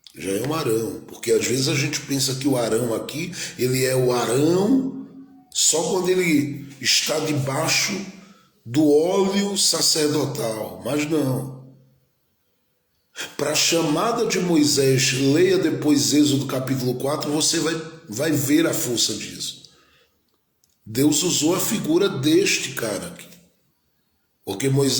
Já é um Arão, porque às vezes a gente pensa que o Arão aqui, ele é o Arão só quando ele está debaixo do óleo sacerdotal, mas não. Para a chamada de Moisés, leia depois Êxodo capítulo 4, você vai ver a força disso. Deus usou a figura deste cara aqui, porque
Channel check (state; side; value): identical; both; correlation 1.00